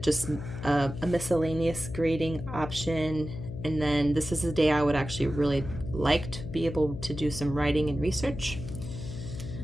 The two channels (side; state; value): left; noise; hum, 9 dB below the sound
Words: just a miscellaneous grading option. And then this is the day I would actually really like to be able to do some writing and research.